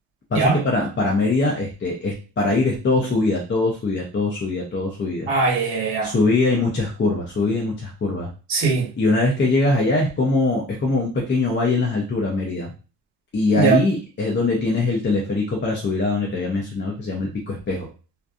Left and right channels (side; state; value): both; normal; correlation 0.45